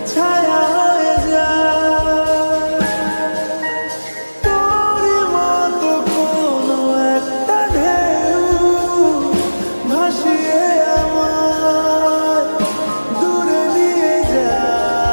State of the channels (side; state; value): both; inverted; correlation -1.00